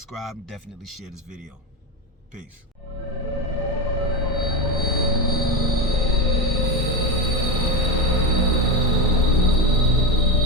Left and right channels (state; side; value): normal; both; correlation 0.15